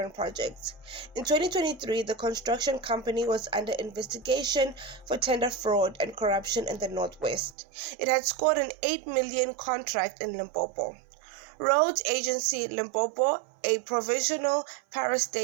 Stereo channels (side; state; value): left; drops out; at 7.6 s